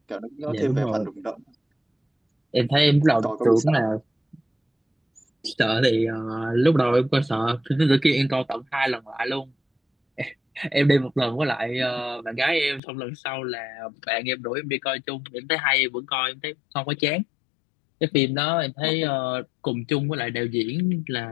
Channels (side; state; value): right; drops out; at 12.8 s